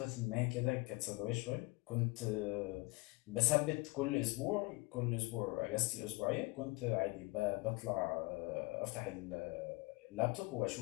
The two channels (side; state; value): right; quieter; 24.5 dB